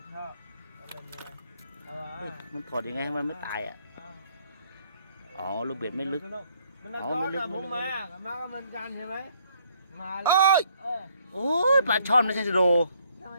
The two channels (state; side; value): inverted; both; correlation -0.67